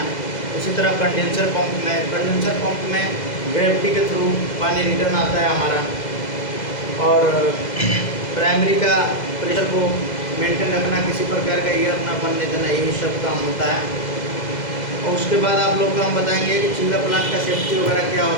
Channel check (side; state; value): right; late; 2.0 ms